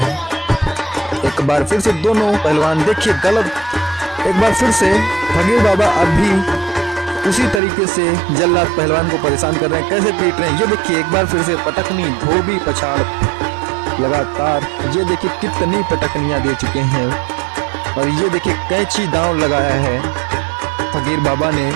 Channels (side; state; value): left; drops out; at 7.6 s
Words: एक बार फिर से दोनों पहलवान देखिए गलत। एक बार फिर से फकीर बाबा अब भी उसी तरीके से जल्लाद पहलवान को परेशान कर रहे हैं, कैसे पीट रहे हैं। ये देखिए एक बार फिर से पटकनी, धोबी, पछाड़ लगातार। ये देखिए कितनी पटकनियां दे चुके हैं और ये देखिए कैंची दांव लगाया है फकीर बाबा ने।